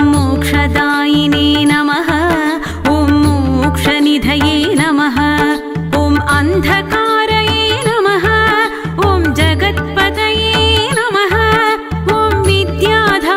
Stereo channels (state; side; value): identical; both; correlation 1.00